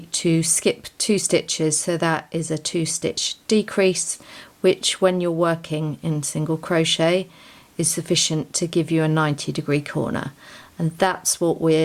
to skip 2 stitches, so that is a 2 stitch decrease, which when you're working in single crochet is sufficient to give you a 90-degree corner, and that's what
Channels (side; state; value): both; identical; correlation 1.00